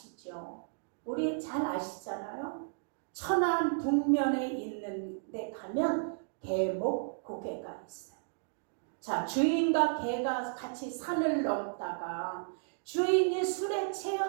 우리 잘 아시잖아요. 천안 북면에 있는 데 가면 개목고개가 있어요. 자, 주인과 개가 같이 산을 넘다가 주인이 술에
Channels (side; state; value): left; silent; digital silence